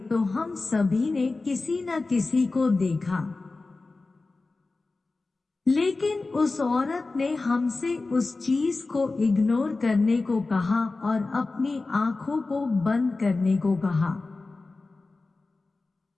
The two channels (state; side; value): quieter; right; 3.6 dB